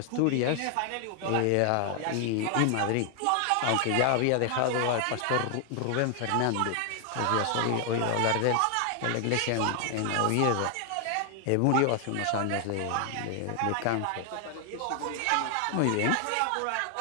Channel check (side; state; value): both; different; correlation 0.00